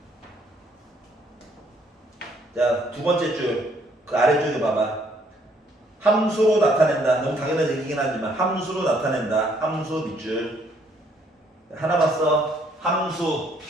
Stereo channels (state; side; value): normal; both; correlation 0.66